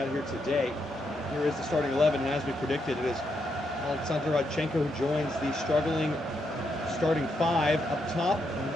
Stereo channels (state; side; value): normal; both; correlation 0.80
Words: here today. Here is the starting 11, and as we predicted, it is Alexander Rodchenko who joins the struggling starting 5 up top, and